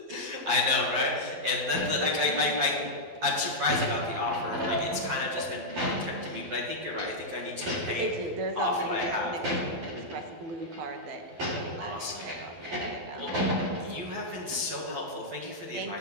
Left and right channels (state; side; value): late; left; 12 ms